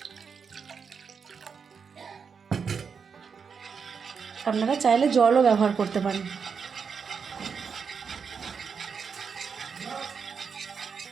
আপনারা চাইলে জলও ব্যবহার করতে পারেন।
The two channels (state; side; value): quieter; left; 6.0 dB